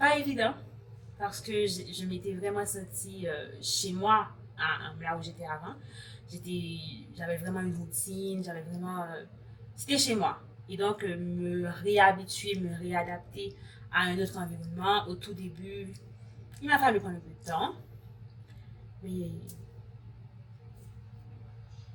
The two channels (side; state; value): both; identical; correlation 1.00